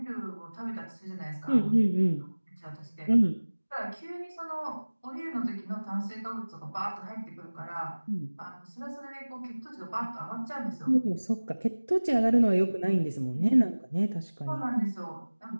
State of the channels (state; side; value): inverted; both; correlation -1.00